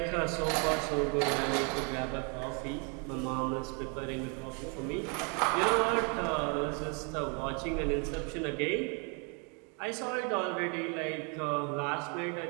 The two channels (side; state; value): left; quieter; 35.6 dB